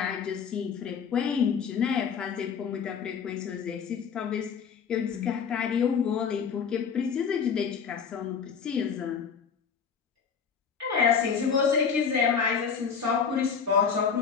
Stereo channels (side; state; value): right; quieter; 6.5 dB